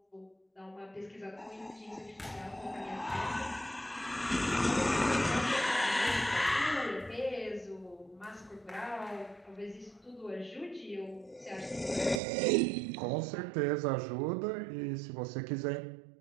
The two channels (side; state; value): left; drops out; at 12.2 s